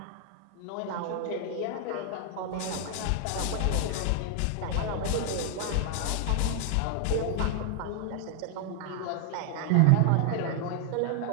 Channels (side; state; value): both; different; correlation 0.00